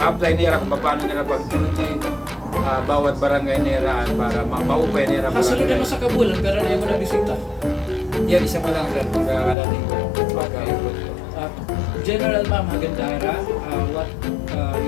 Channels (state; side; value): drops out; right; at 9.6 s